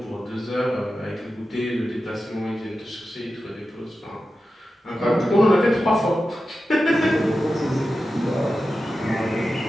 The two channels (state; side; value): normal; both; correlation 0.92